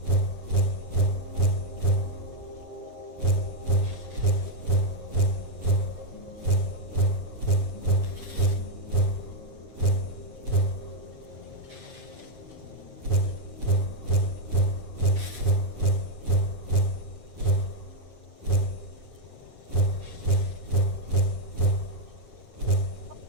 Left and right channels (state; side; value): late; left; 8.4 ms